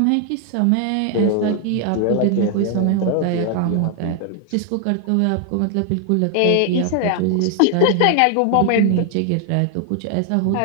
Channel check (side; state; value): both; different; correlation 0.00